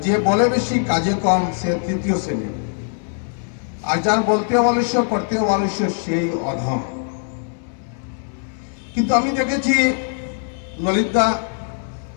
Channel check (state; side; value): silent; right; digital silence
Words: যে বলে বেশি কাজে কম সে তৃতীয় শ্রেণী, আর যার বলতে অবলস্য করতে অবলস্য সেই অধম। কিন্তু আমি দেখেছি ললিতদা